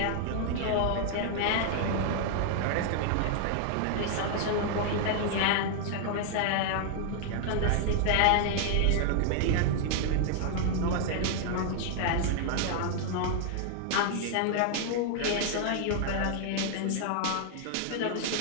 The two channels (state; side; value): different; both; correlation 0.00